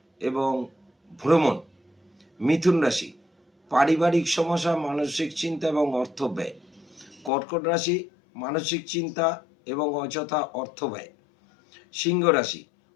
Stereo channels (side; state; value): right; drops out; at 7.3 s